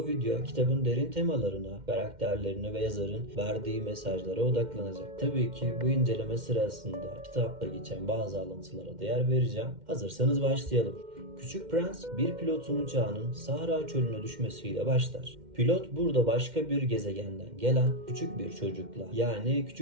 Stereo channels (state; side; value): late; left; 2.1 ms